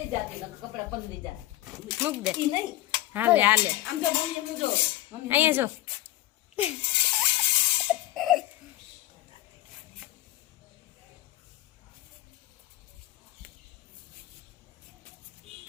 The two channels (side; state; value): right; quieter; 15.9 dB